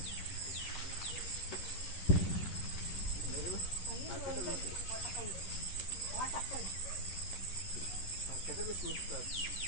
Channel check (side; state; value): right; late; 11 ms